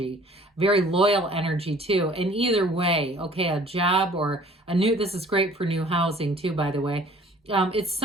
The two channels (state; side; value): normal; both; correlation 0.53